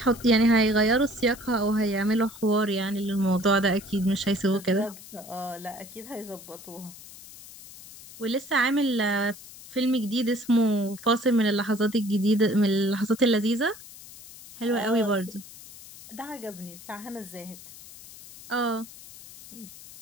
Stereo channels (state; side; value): noise; left; hiss, 17 dB below the sound